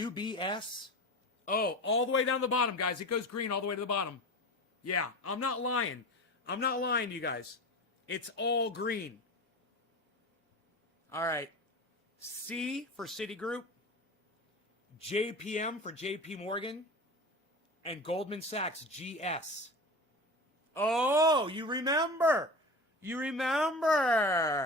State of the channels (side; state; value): both; normal; correlation 0.31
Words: Oh, all the way down the bottom, guys. It goes green all the way to the bottom. Yeah, I'm not lying. I'm not lying to you guys. It's all green. All right. C for Citigroup, JPM for JP Morgan, and Goldman Sachs, GS. Oh, you remember. You